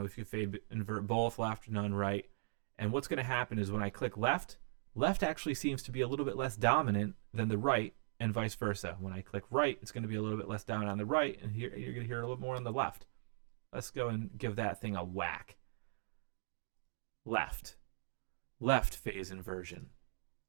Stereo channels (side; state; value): left; silent; digital silence